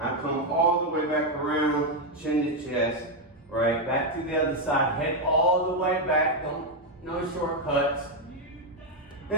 come all the way back around, chin to chest, right? Back to the other side, head all the way back. No shortcuts.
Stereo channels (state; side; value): normal; both; correlation 0.03